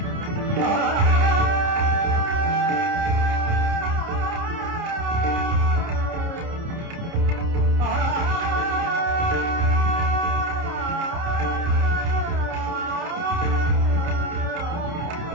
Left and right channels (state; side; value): late; left; 29 ms